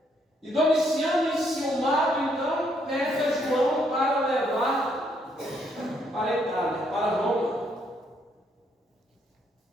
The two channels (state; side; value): normal; both; correlation 0.72